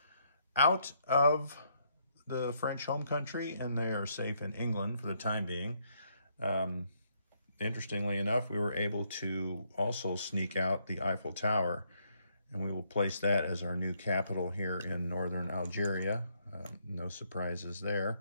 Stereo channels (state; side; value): inverted; both; correlation -0.72